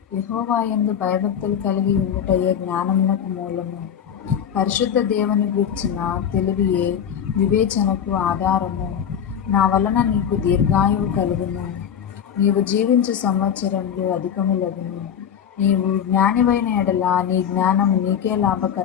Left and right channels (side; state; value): right; quieter; 8.6 dB